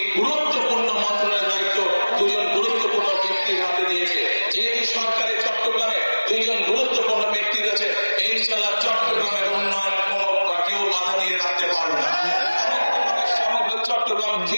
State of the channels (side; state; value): both; inverted; correlation -1.00